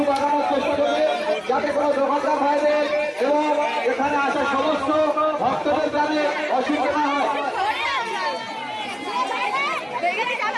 বাগানোর চেষ্টা করবে, যাতে কোনো দোকানদার ভাইদের এবং এখানে আসা সমস্ত ভক্তদের যাতে অসুবিধা না হয়।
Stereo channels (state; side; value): identical; both; correlation 1.00